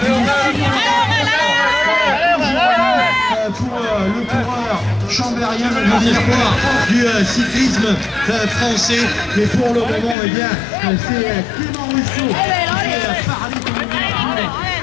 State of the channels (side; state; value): right; drops out; at 10.2 s